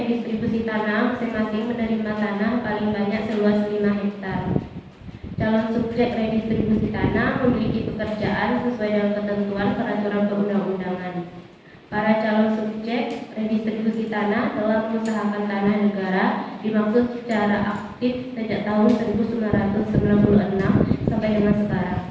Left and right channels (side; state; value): both; identical; correlation 1.00